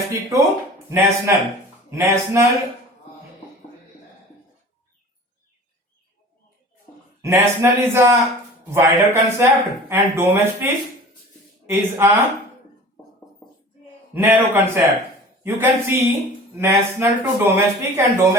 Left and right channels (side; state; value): both; normal; correlation 0.42